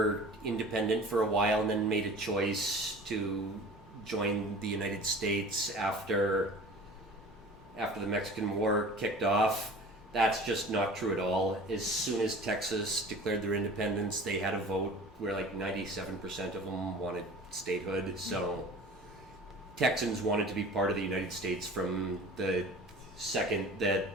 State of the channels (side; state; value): both; normal; correlation 0.42